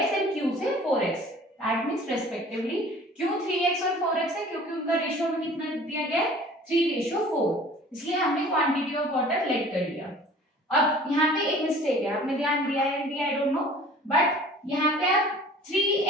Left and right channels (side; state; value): both; normal; correlation 0.47